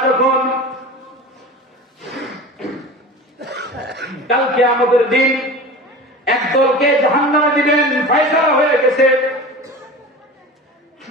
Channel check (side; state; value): both; normal; correlation 0.34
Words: যখন কাল কিয়ামতের দিন একদলকে জাহান্নামে দিবেন, ফয়সালা হয়ে গেছে,